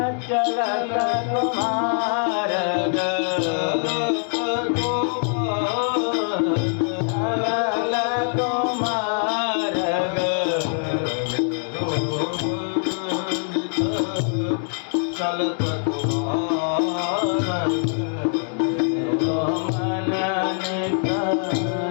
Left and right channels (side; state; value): right; silent; 63 dB below the other